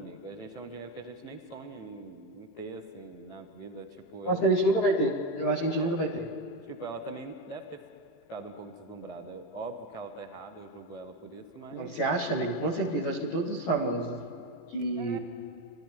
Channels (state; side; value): late; right; 18 ms